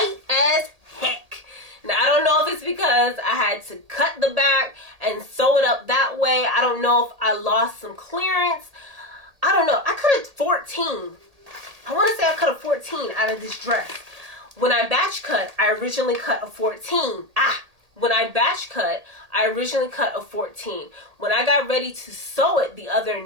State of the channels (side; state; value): left; late; 1.8 ms